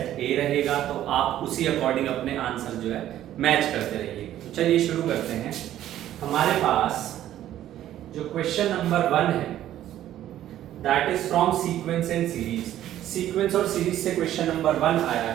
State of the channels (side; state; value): left; quieter; 12.4 dB